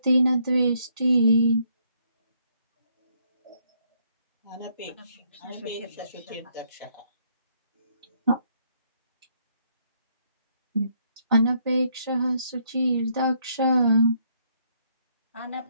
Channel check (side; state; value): both; inverted; correlation -0.71